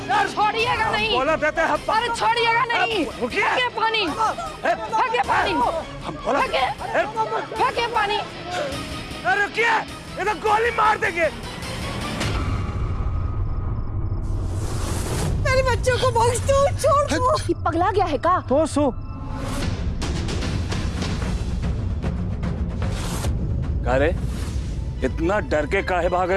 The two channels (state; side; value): identical; both; correlation 1.00